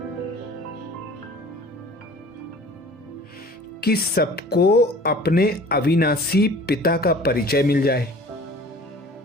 कि सबको अपने अविनाशी पिता का परिचय मिल जाए।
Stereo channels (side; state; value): both; normal; correlation 0.47